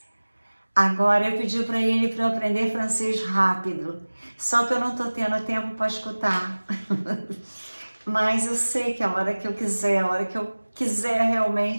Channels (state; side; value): inverted; both; correlation -1.00